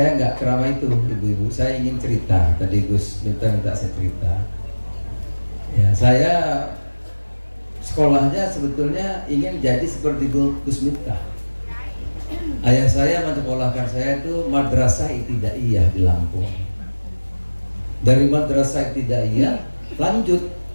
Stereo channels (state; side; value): inverted; both; correlation -1.00